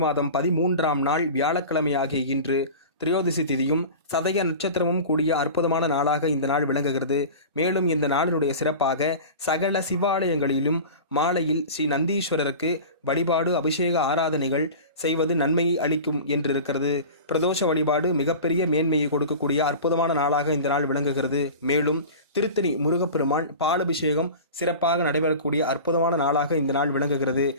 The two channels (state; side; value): inverted; both; correlation -0.34